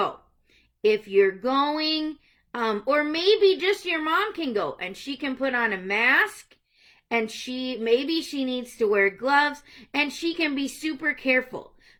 If you're going, or maybe just your mom can go and she can put on a mask, and maybe she needs to wear gloves, and she can be super careful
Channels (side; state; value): both; identical; correlation 1.00